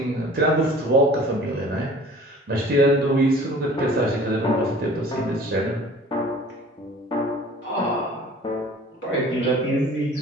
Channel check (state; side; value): normal; both; correlation 0.47